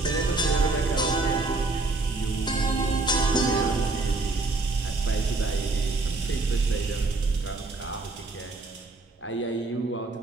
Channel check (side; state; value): left; quieter; 3.4 dB